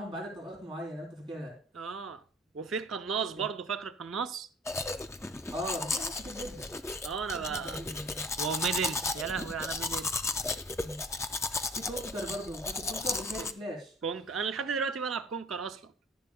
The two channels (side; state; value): both; normal; correlation 0.48